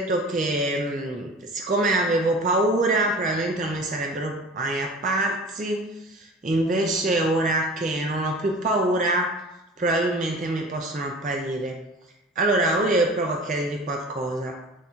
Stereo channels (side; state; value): both; normal; correlation 0.40